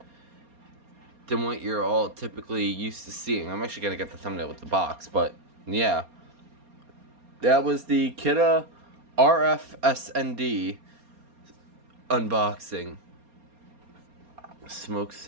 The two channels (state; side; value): late; left; 4.3 ms